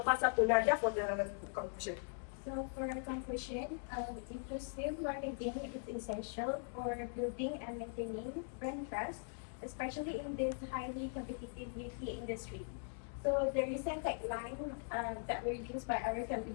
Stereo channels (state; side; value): silent; right; digital silence